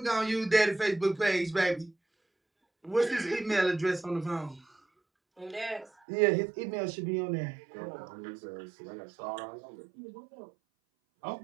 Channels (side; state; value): left; drops out; at 5.9 s